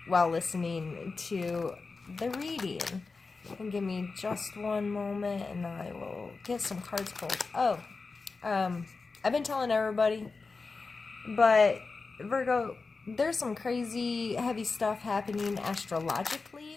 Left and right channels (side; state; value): right; quieter; 4.2 dB